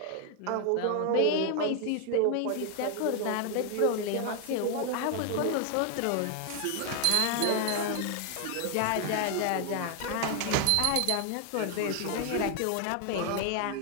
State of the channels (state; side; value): different; both; correlation 0.00